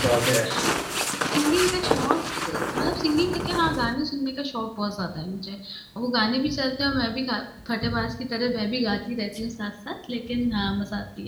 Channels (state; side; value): identical; both; correlation 1.00